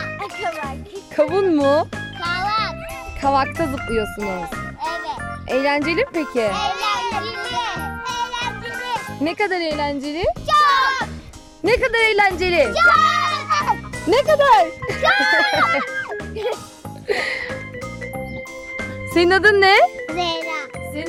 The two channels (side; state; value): both; identical; correlation 1.00